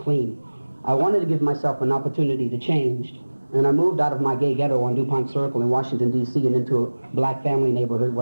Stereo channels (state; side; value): inverted; both; correlation -1.00